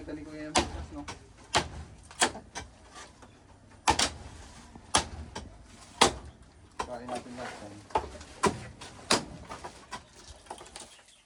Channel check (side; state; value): both; identical; correlation 1.00